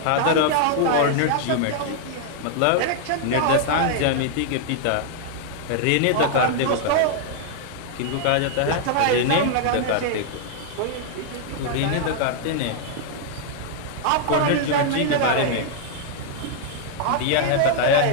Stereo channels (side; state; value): both; different; correlation 0.00